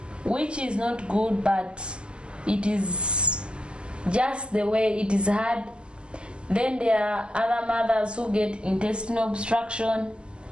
which is not good, but it is just the way it is hard. Then there are other mothers who get intestinal obstruction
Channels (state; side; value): late; left; 0.055 ms